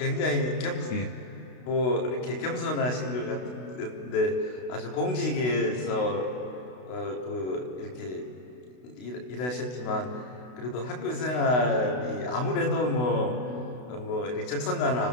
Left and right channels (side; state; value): right; late; 32 ms